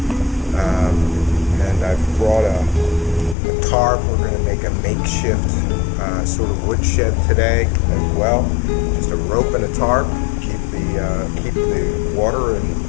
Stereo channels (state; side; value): drops out; right; at 3.4 s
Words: And I've brought a tarp. We're going to make a makeshift sort of woodshed today as well. Just a rope and a tarp, keep the water